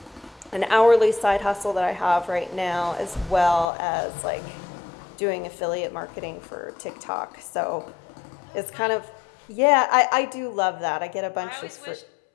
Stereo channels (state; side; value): drops out; right; at 3.7 s